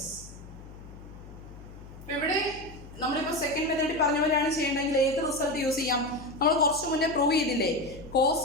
ഇവിടെ നമ്മളിപ്പോൾ സെക്കൻഡ് മെത്തേഡ് പറഞ്ഞ പോലെയാണ് ചെയ്യേണ്ടതെങ്കിൽ ഏത് റിസൾട്ട് യൂസ് ചെയ്യാം? നമ്മൾ കുറച്ച് മുന്നേ പ്രൂവ് ചെയ്തില്ലേ, cos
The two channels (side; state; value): left; noise; hum, 16 dB below the sound